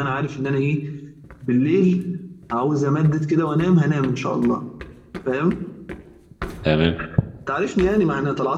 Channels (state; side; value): identical; both; correlation 1.00